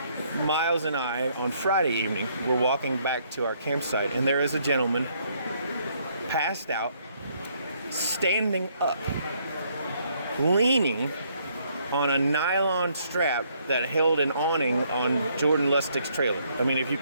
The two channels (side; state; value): both; inverted; correlation -0.69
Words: Miles and I, on Friday evening, were walking back to our campsite, and there is a gentleman passed out, standing up, leaning on a nylon strap that held an awning on Jordan Lustig's trailer. I mean, if you